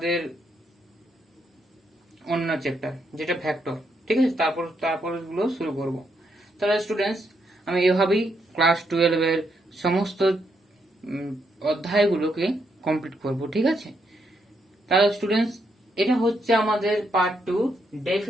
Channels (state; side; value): normal; both; correlation 0.78